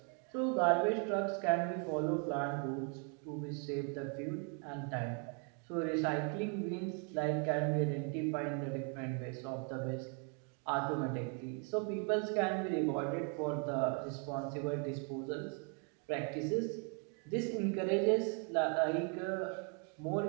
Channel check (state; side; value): quieter; left; 39.4 dB